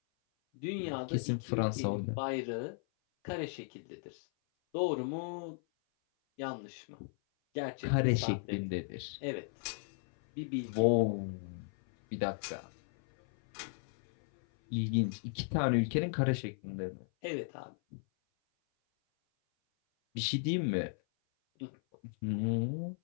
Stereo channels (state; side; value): silent; right; 54 dB below the other